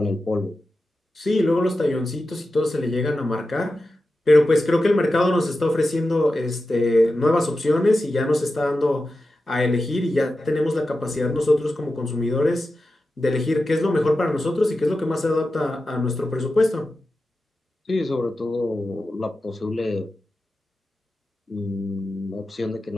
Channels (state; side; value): normal; both; correlation 0.92